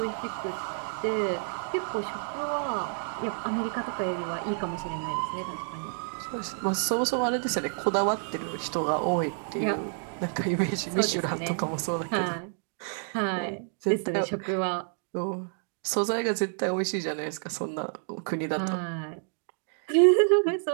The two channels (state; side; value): silent; left; 58 dB below the other